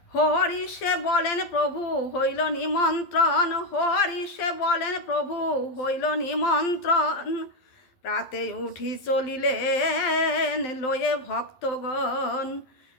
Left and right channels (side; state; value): right; late; 12 ms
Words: হরিষে বলেন প্রভু হইল নিমন্ত্রণ, হরিষে বলেন প্রভু হইল নিমন্ত্রণ। প্রাতে উঠি চলিলেন লয়ে ভক্তগণ,